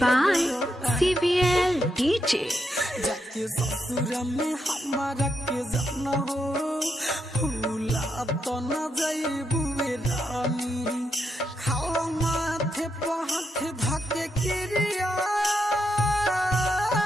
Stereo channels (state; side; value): normal; both; correlation 0.82